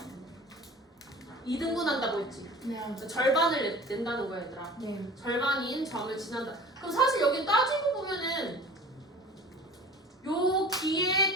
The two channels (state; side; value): normal; both; correlation 0.42